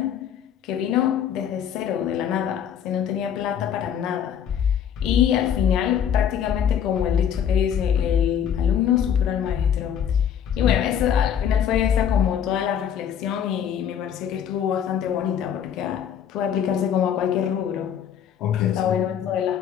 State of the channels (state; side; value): quieter; right; 8.8 dB